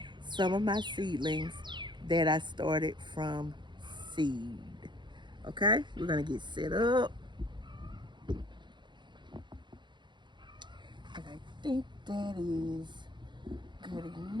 some of my seedlings that I started from seed. Okay, we're going to get set up. And I think that is good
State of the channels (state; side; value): late; left; 0.22 ms